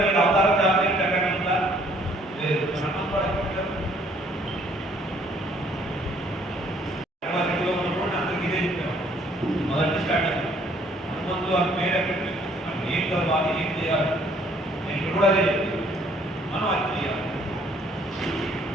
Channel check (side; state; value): both; normal; correlation 0.62